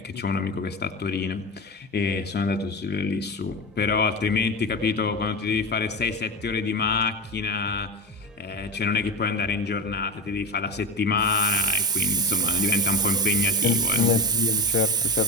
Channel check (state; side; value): normal; both; correlation 0.22